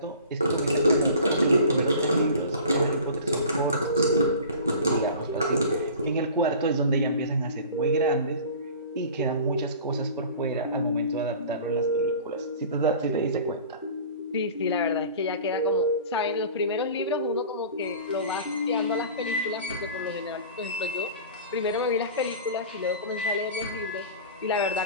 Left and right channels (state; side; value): inverted; both; correlation -0.41